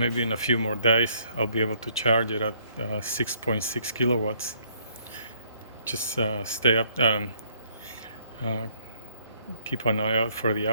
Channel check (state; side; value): inverted; both; correlation -0.66